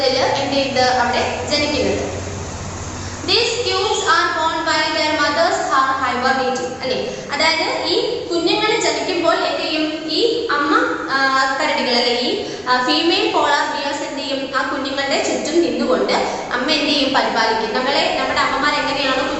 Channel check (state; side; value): identical; both; correlation 1.00